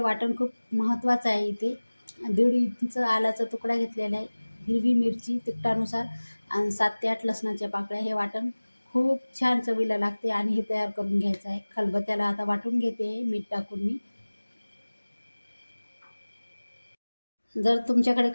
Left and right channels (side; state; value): both; inverted; correlation -1.00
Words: खूप महत्त्वाचं आहे. इथे 1.5 इंच आलाचा तुकडा घेतलेला आहे, हिरवी मिरची तिखटानुसार आणि 7 ते 8 लसणाच्या पाकळ्या. हे वाटण खूप छान चवीला लागते आणि हे तयार करून घ्यायचं आहे. खलबत्त्याला आता वाटून घेते मीठ टाकून मी. जर तुमच्याकडे